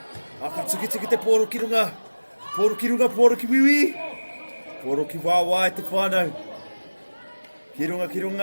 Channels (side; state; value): both; inverted; correlation -1.00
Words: Aka tuki te poro ki runga. Poro ki runga, poro ki wiwi. Poro ki wawa e te whānau. Ki